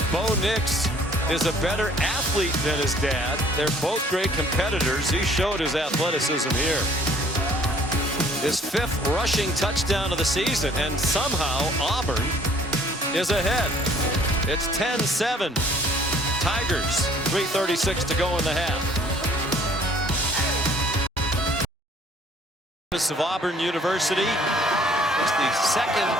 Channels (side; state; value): both; normal; correlation 0.57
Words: Bo Nix is a better athlete than his dad. They're both great competitors. He showed his athleticism here. His 5th rushing touchdown of the season, and somehow Auburn is ahead. It's 10-7. Tigers, 3:36 to go in the half. Of Auburn University. It's the